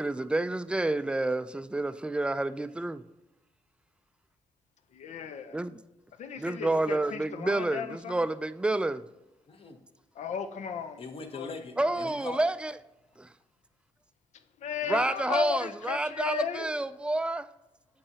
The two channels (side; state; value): both; normal; correlation 0.82